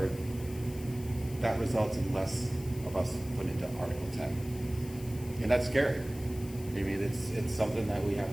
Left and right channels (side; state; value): left; noise; hiss, 18 dB below the sound